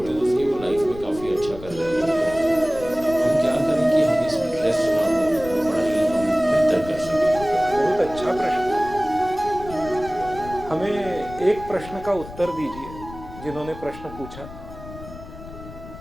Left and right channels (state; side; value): noise; left; rumble, 15 dB below the sound